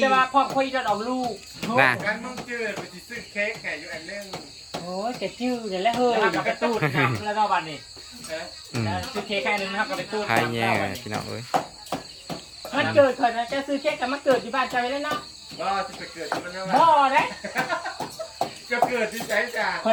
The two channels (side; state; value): both; identical; correlation 1.00